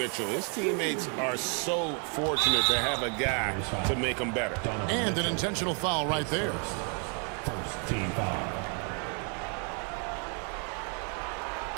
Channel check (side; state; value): left; quieter; 39.8 dB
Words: His teammates are so fortunate to have a guy to make them better. And an intentional foul right there. First team foul.